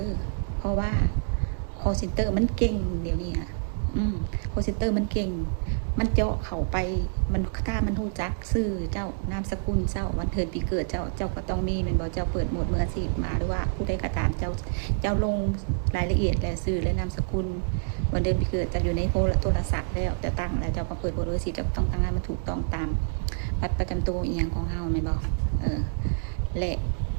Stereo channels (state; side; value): silent; left; digital silence